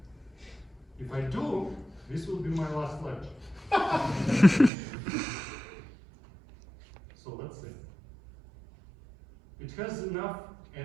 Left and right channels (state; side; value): drops out; left; at 4.7 s